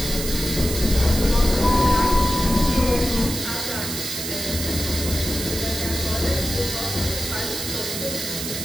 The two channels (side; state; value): right; noise; hiss, 5 dB below the sound